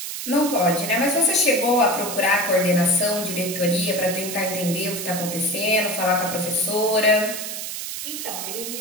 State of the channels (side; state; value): right; noise; hiss, 6 dB below the sound